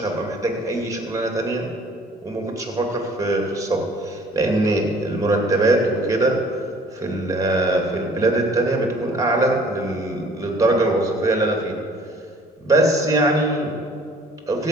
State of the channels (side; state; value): both; normal; correlation 0.54